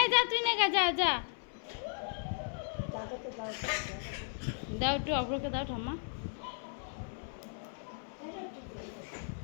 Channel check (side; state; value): right; silent; 54 dB below the other